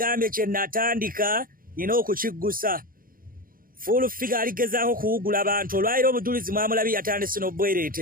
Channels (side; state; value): left; late; 0.41 ms